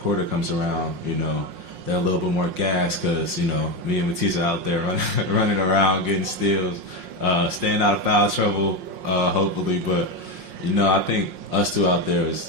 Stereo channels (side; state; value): left; late; 5.6 ms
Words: quarter comes around, they're a little bit more gassed because me and Matisse are out there running around, getting steals, staying out of foul trouble, hopefully. But I think us two out there